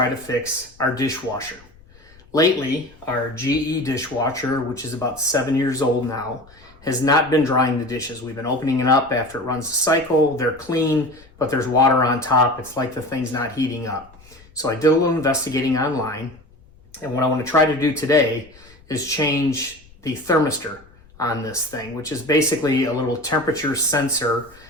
to fix our dishwasher. Lately, our GE dishwasher, which is about 7 years old now, has not been drying the dishes. We've been opening it up after it runs the cycle. They're clean, but there's water on top. It's like the thing's not heating up. So I did a little investigating online, and what I want to try to do today is change the thermistor on this thing, which is basically a little temperature sensor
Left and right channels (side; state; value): left; noise; rumble, 26 dB below the sound